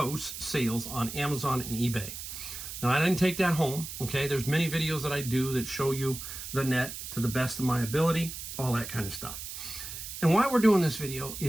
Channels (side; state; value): right; noise; hiss, 9 dB below the sound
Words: sales on Amazon and eBay. Now, I didn't take that home, okay? There's many videos that I do that show you the net to the best of my ability, all that kind of stuff. And why we're doing this video